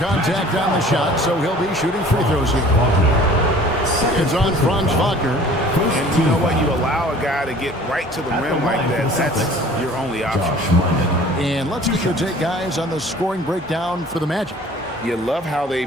on the shot, so he'll be shooting free throws here. It's on Franz Wagner. And you know what? You allow a guy to get right to the rim like that. That's your only option. And let's get your take, guys, on the scoring breakdown for the Magic. You love how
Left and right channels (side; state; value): both; normal; correlation 0.49